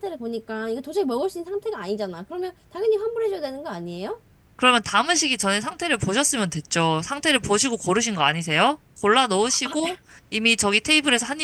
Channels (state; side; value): identical; both; correlation 1.00